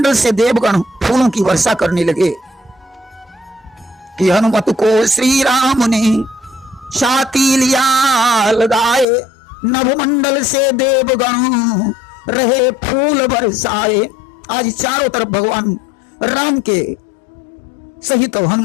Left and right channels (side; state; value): right; drops out; at 9.1 s